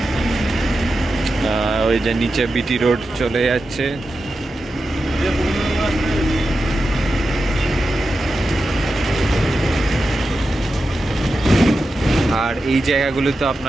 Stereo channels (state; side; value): normal; both; correlation 0.91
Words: ওই যে নিচে বিটি রোড চলে যাচ্ছে। আর এই জায়গাগুলো তো